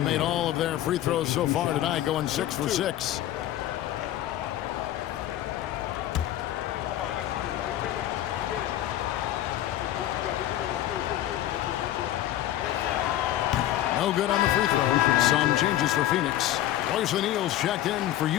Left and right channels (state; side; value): quieter; right; 13.3 dB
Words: made all of their free throws so far tonight, going 6 for 6. No good on the free throw. Some changes for Phoenix. Royce O'Neal's checked in for